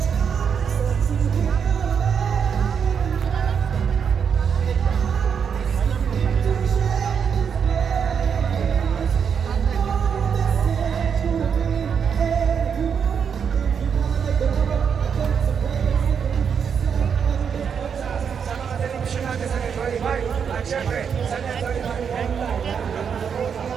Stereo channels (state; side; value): quieter; left; 7.0 dB